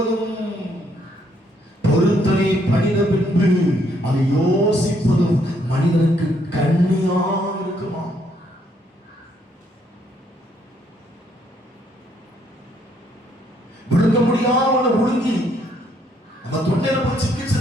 பொருத்தனை பண்ணின பின்பு அதை யோசிப்பதும் மனிதனுக்கு கண்ணியா இருக்குமா. விழுங்க முடியாத ஒழுங்கி நம்ம தொண்டையில போய்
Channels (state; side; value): normal; both; correlation 0.70